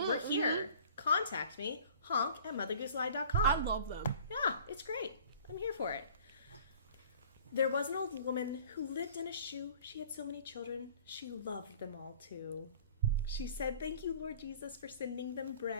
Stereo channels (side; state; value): both; inverted; correlation -0.48